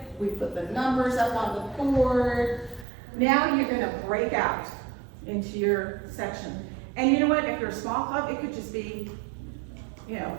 we put the numbers up on the board. Now you're gonna break out into your section. And you know what, if you're a small club, it could just be,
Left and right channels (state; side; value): drops out; left; at 2.9 s